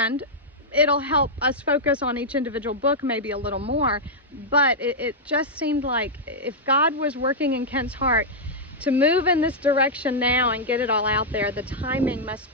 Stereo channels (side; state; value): both; normal; correlation -0.06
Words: it'll help us focus on each individual book maybe a little more, but it just seemed like if God was working in Kent's heart to move in this direction now and get it all out there, the timing